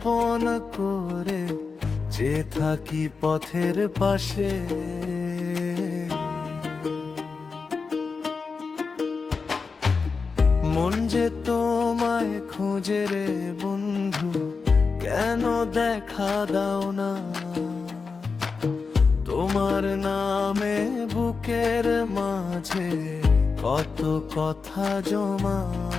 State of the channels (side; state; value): right; quieter; 4.8 dB